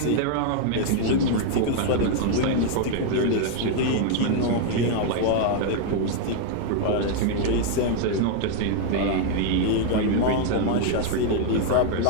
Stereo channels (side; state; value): both; different; correlation 0.00